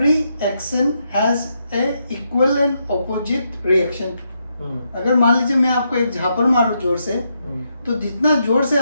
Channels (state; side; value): inverted; both; correlation -0.81